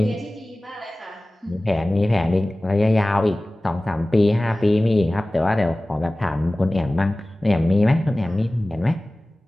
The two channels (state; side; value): normal; both; correlation 0.98